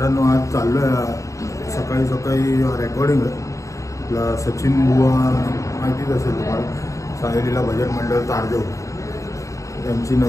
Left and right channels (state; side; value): late; right; 0.15 ms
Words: आज चाललो आहे सकाळी सकाळी रेकॉर्डिंग आहे. आपला सचिन बुवा माहितीच असेल तुम्हाला, सांगलीला भजन मंडळ तारदेव त्यांची